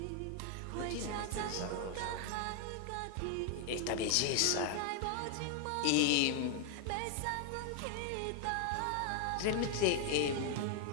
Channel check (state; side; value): different; both; correlation 0.00